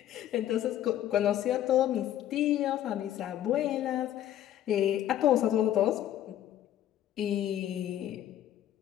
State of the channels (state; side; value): quieter; right; 11.9 dB